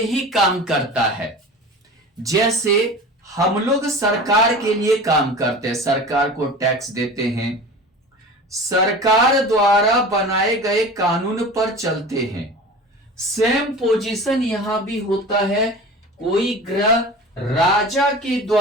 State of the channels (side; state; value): both; normal; correlation 0.36